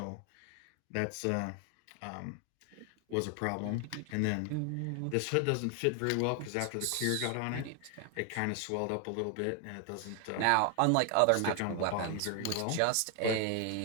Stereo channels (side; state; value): both; different; correlation 0.00